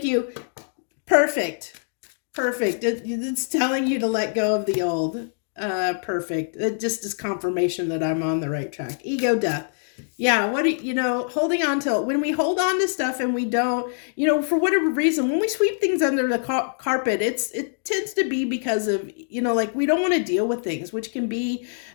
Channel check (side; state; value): right; silent; digital silence